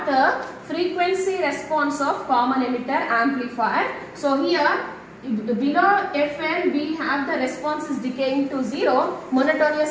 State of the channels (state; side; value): identical; both; correlation 1.00